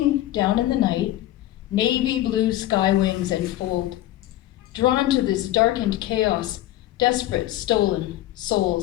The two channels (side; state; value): right; quieter; 14.5 dB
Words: down in the night, navy blue sky wings enfold. Drawn to this darkened chaos, desperate, stolen